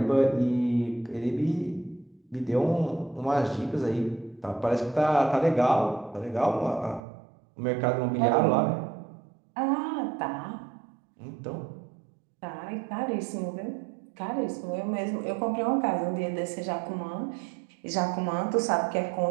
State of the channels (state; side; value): drops out; left; at 7.0 s